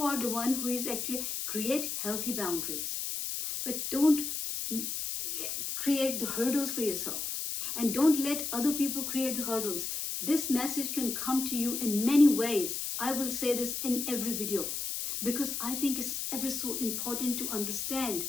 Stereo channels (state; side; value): noise; left; hiss, 3 dB below the sound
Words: are the one who is actually create healthy boundaries. But don't create the hurdles for yourself. And don't let other people create the hurdles. This message can come to you in many ways. I will say this in every video. Because I think it's ever so important to